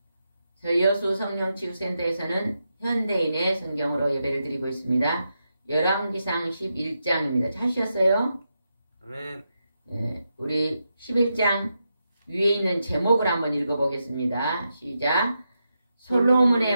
저희 여수 성령치유센터에서는 현대인의 성경으로 예배를 드리고 있습니다. 열왕기상 11장입니다. 찾으셨어요? 아멘. 네, 우리 11장 위에 있는 제목을 한번 읽어보겠습니다. 시작.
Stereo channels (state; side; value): inverted; both; correlation -0.86